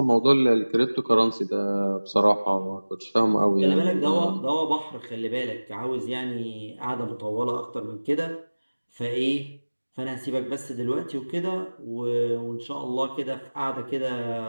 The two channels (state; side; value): inverted; both; correlation -1.00